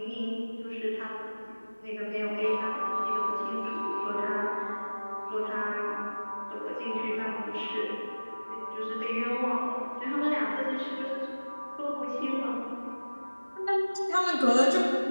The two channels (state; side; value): inverted; both; correlation -1.00